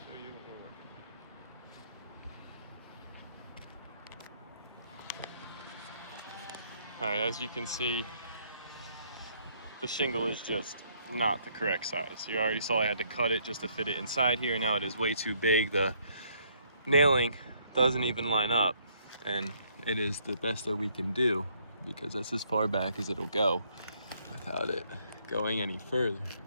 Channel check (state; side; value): inverted; both; correlation -0.67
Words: show you what we're working with. Alright, as you can see, the shingle is just not the correct size. You already saw I had to cut it just to fit it inside here. Now it is way too big. The nailing doesn't even line up, and it is the best that we can do because that's as far back as it'll go without it going any further.